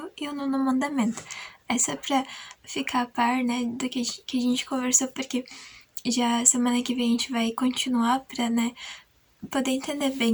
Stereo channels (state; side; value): identical; both; correlation 1.00